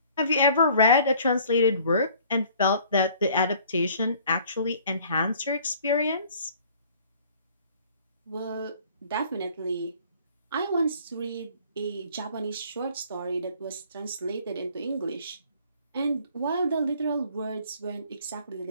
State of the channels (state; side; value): inverted; both; correlation -0.55